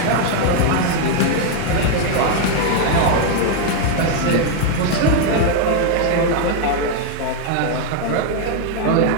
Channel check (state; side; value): different; both; correlation 0.00